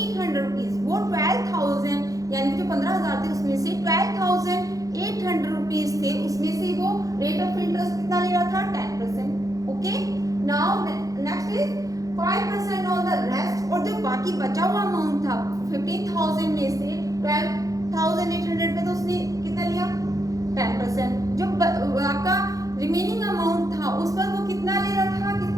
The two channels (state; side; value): late; left; 0.17 ms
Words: rupees. वो 12,000 यानी कि जो 15,000 थे उसमें से 12,800 रुपीज थे, उसमें से वो रेट ऑफ इंटरेस्ट कितना ले रहा था, 10%। Okay, now next is 5% on the rest. और जो बाकी बचा हुआ अमाउंट था 15,000 में से 12,800 पे तो उसने कितना लिया, 10%। जो आपका रिमेनिंग अमाउंट था उस पर वो कितना ले रहा था,